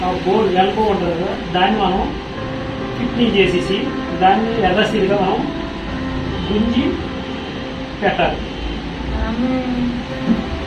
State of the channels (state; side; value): identical; both; correlation 1.00